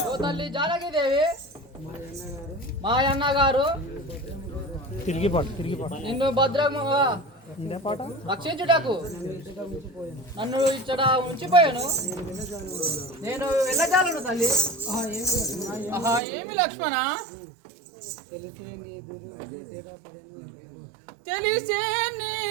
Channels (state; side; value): drops out; left; at 16.2 s